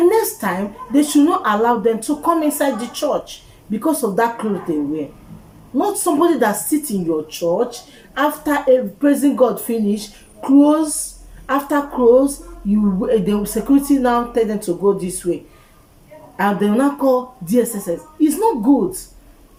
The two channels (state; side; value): identical; both; correlation 1.00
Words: time they should not allow them to come inside the church because of that clothes they wear. Not somebody that sits in your church after praising God finish, close, after close, the security now tell them to go this way, and they will now call DSSS. It's not good.